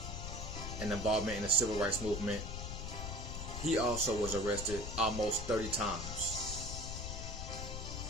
and involvement in the civil rights movement, he also was arrested almost 30 times.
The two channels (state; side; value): noise; left; rumble, 5 dB below the sound